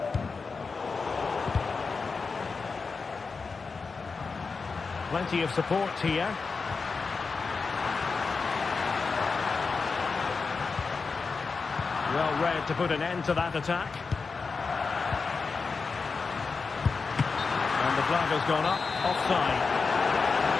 Plenty of support here. Well read to put an end to that attack. And the flag has gone up, offside.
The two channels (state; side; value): quieter; right; 4.7 dB